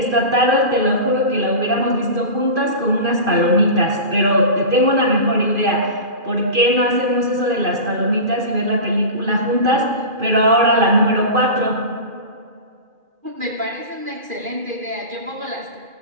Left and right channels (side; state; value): left; late; 2.4 ms